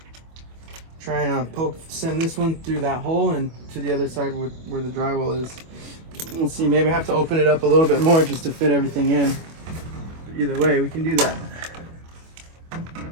try and send this one through that hole and to the other side where the drywall is. We'll see, maybe I have to open it up a little bit more just to fit everything in. But either way, we can do that.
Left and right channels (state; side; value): late; left; 25 ms